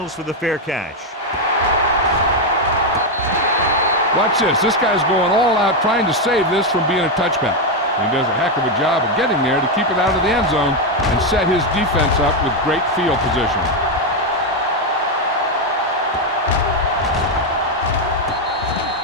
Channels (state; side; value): normal; both; correlation 0.04